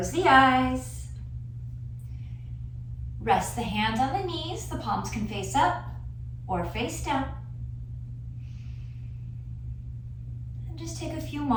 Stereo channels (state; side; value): identical; both; correlation 1.00